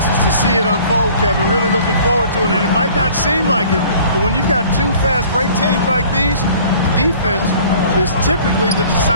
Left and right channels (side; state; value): both; inverted; correlation -0.51